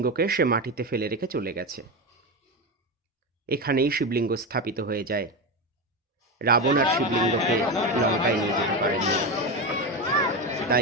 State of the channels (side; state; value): both; normal; correlation 0.17